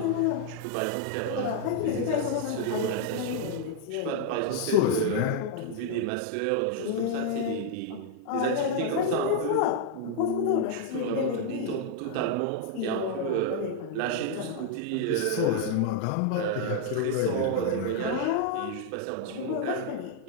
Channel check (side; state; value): both; different; correlation -0.01